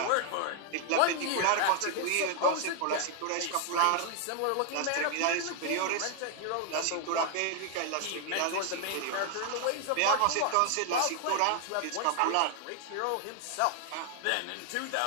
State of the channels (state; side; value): different; both; correlation 0.00